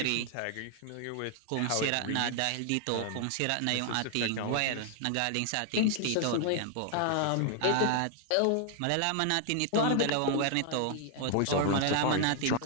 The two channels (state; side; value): different; both; correlation 0.00